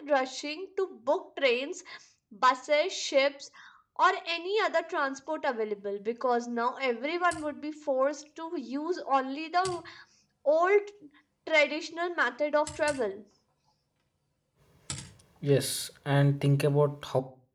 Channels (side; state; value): both; identical; correlation 1.00